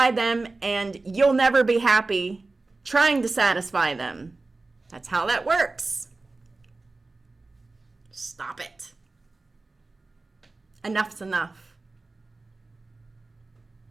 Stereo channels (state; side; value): quieter; left; 3.4 dB